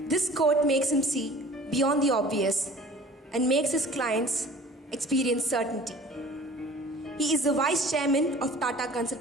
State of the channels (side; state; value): both; normal; correlation 0.46